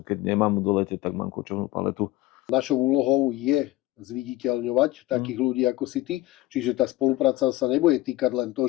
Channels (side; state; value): right; quieter; 17.3 dB